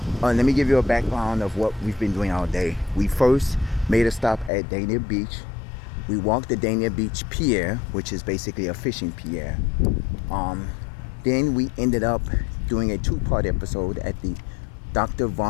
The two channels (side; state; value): right; drops out; at 4.5 s